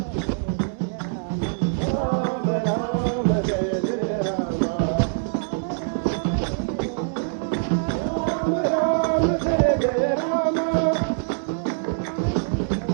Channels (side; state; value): left; silent; 63 dB below the other